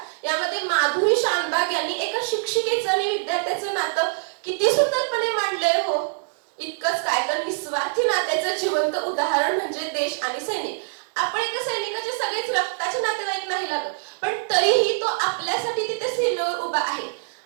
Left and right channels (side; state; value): left; silent; digital silence